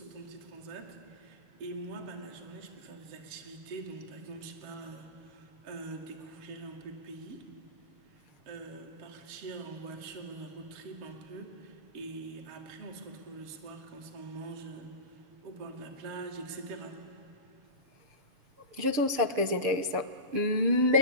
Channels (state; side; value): late; left; 6.7 ms